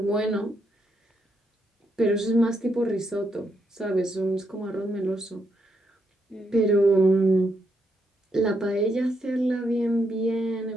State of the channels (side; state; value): both; normal; correlation 0.78